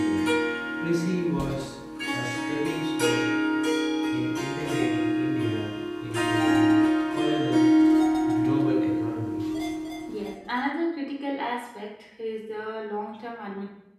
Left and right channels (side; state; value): both; identical; correlation 1.00